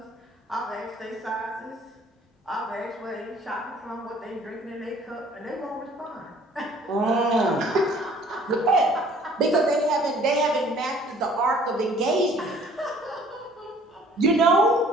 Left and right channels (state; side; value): normal; both; correlation 0.55